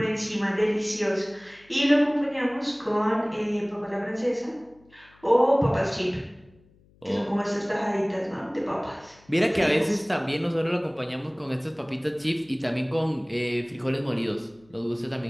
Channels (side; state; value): left; noise; hum, 30 dB below the sound